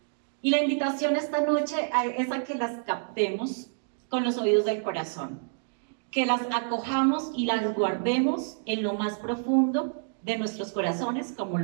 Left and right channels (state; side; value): silent; left; digital silence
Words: Y la invitación esta noche es a que las captemos con los oídos del corazón, que las acojamos y las guardemos en lo más profundo de nuestros corazones, como